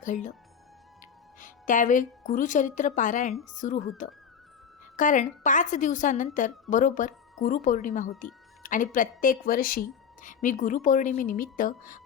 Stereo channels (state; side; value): quieter; right; 7.2 dB